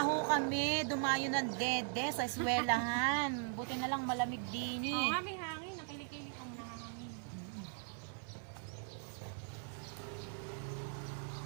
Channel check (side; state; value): left; silent; 51 dB below the other